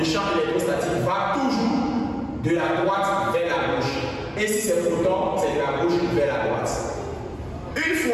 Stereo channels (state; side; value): identical; both; correlation 1.00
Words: champ électrostatique va toujours de la droite vers la gauche. Et si c'est proton, c'est de la gauche vers la droite. Une